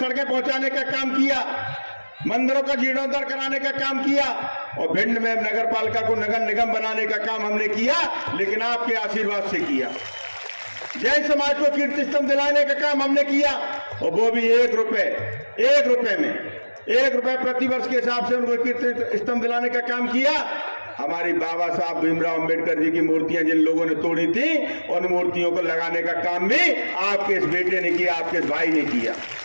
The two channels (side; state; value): both; inverted; correlation -1.00